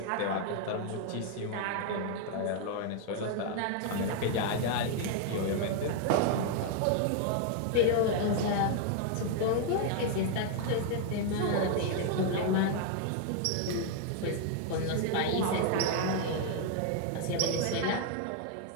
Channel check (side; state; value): both; different; correlation 0.00